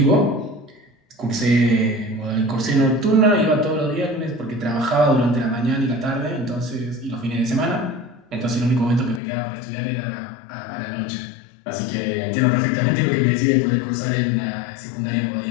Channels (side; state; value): right; drops out; at 9.2 s